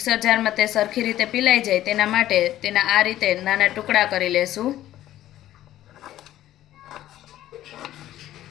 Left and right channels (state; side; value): quieter; right; 13.4 dB